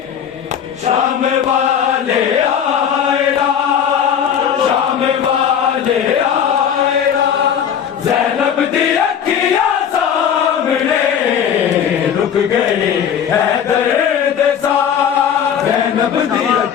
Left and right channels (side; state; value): right; quieter; 8.4 dB